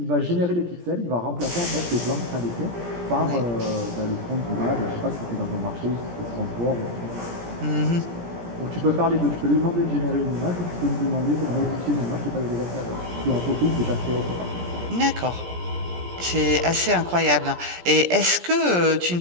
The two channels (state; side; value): late; left; 17 ms